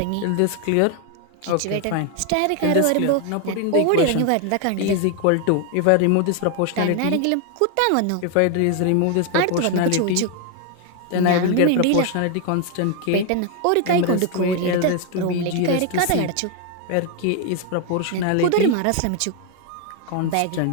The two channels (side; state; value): both; different; correlation 0.00